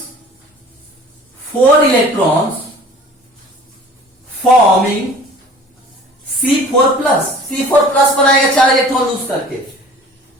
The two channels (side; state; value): both; normal; correlation 0.46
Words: 4 electrons forming C4+। C4+ बनाएगा 4 इलेक्ट्रॉन लूज करके।